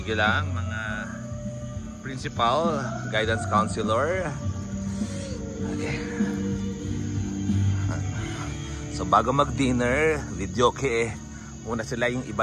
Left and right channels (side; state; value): both; identical; correlation 1.00